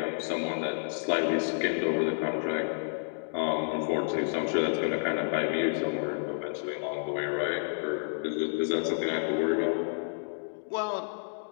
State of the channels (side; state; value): right; silent; digital silence